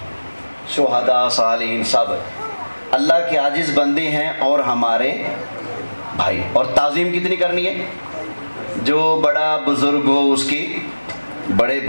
شہداء، صالحین سب اللہ کے عاجز بندے ہیں اور ہمارے بھائی۔ اور تعظیم کتنی کرنی ہے؟ جو بڑا بزرگ ہو اس کی بڑے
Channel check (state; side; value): inverted; both; correlation -1.00